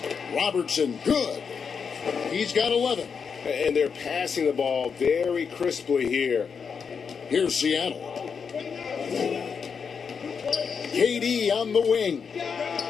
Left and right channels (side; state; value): right; quieter; 6.2 dB